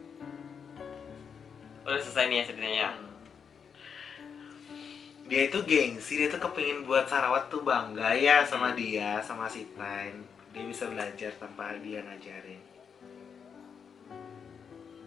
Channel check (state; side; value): quieter; right; 6.7 dB